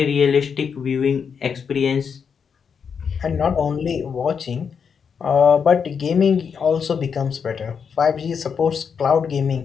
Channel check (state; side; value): quieter; right; 6.5 dB